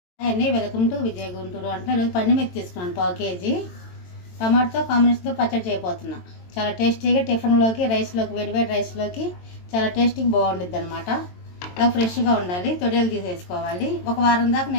అండి, welcome to Vijay Guntur. అంటే ఈరోజు పండు మిర్చి తీసుకున్నాను 1/4 కేజీ. టమాటోతో కాంబినేషన్తో పచ్చడి చేయబోతున్నా. చాలా టేస్టీగా టిఫిన్లోకి, రైస్లోకి, వేడివేడి రైస్లోకి చాలా టేస్టీగా బాగుండిద్ది అనమాట. అలా ఫ్రెష్గా ఉండాలి. తొడియలు తీసేసుకోవాలి. ఒక వారం దాకా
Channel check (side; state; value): right; late; 22 ms